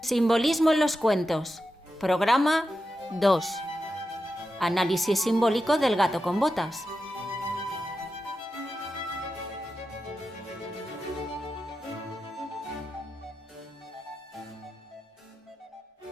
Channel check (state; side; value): normal; both; correlation 0.90